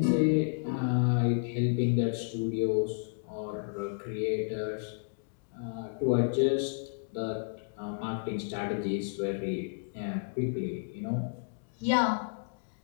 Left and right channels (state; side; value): silent; right; digital silence